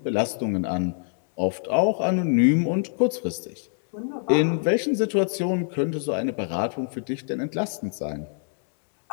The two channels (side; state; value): right; silent; 62 dB below the other